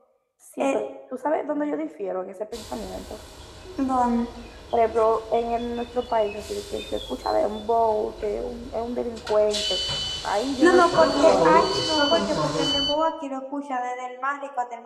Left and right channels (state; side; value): identical; both; correlation 1.00